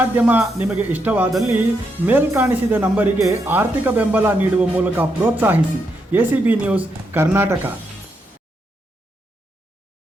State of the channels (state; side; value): normal; both; correlation 0.81